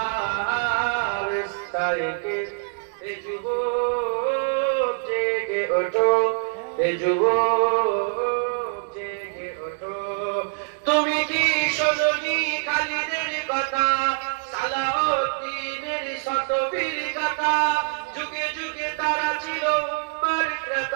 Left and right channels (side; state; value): left; silent; digital silence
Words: استيقظ এ যুবক জেগে ওঠো, এ যুবক জেগে ওঠো। তুমি কি শোনোনি খালিদের কথা, সালাউদ্দিনের শত বীর গাথা? যুগে যুগে তারা ছিল উম্মার